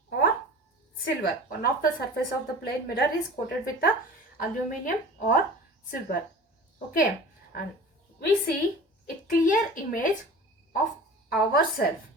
or silver. One of the surface of the plane mirror is coated with the aluminum or silver. Okay, and we see a clear image of ourselves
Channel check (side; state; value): both; normal; correlation 0.39